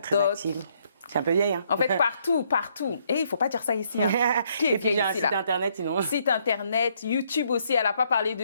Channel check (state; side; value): inverted; both; correlation -0.70